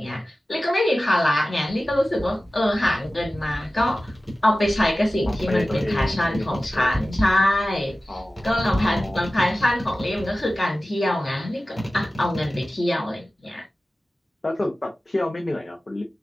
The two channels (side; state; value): both; normal; correlation 0.96